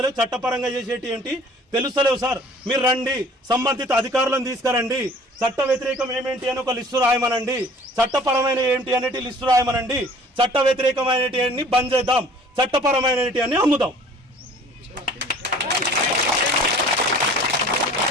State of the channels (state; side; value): normal; both; correlation 0.50